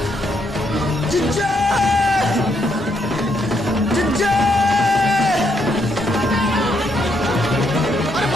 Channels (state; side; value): normal; both; correlation 0.75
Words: जिज्जा, जिज्जा। अरे